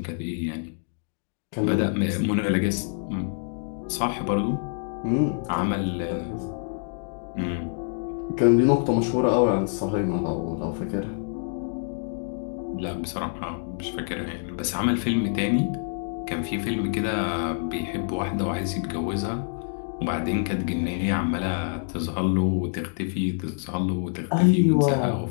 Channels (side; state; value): right; silent; digital silence